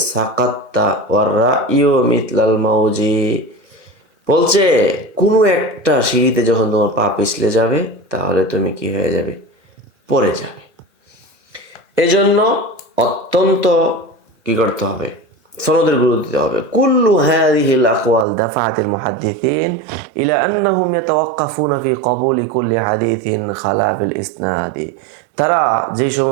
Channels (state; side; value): drops out; left; at 18.2 s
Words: সাকাত্তা ওয়ার রাইয়ু মিথলাল মাউজি, বলছে কোনো একটা সিঁড়িতে যখন তোমার পা পিছলে যাবে তাহলে তুমি কি হয়ে যাবে? পড়ে যাবে। এজন্য অত্যন্ত কি করতে হবে? সনদের গুরুত্ব দিতে হবে। কুল্লু হাযিহিল আকওয়াল দাফাআতিল মুহাদ্দিসিন ইলা আন্নাহুম ইয়াতাওয়াক্কাফুনা ফি কবুলি কুল্লি হাদিসিন খালা বিল ইসনাদি, তারা যে